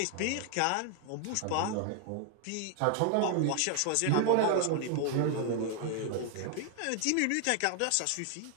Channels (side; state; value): both; different; correlation 0.00